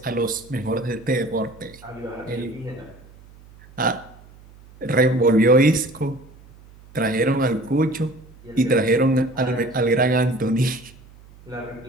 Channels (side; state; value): right; noise; hum, 23 dB below the sound